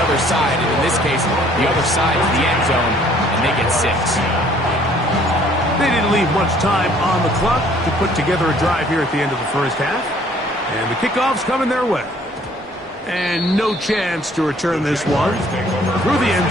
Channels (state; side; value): normal; both; correlation 0.59